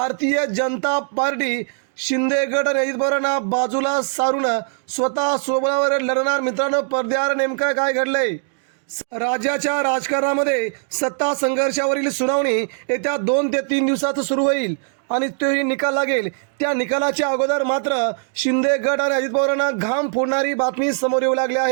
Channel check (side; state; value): left; silent; 65 dB below the other